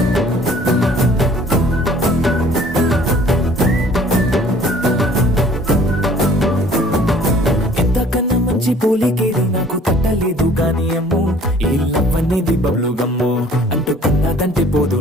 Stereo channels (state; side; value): normal; both; correlation 0.53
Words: ఎంతకన్నా మంచి పోలికేది నాకు తట్టలేదు గాని అమ్ము ఈ లవ్ అనేది బబ్లు గమ్ము అంటుకున్నదంటే పోదు